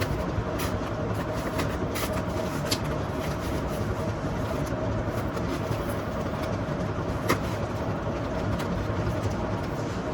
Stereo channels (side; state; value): both; identical; correlation 1.00